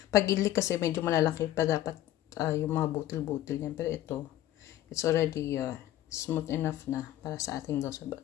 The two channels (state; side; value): quieter; right; 13.4 dB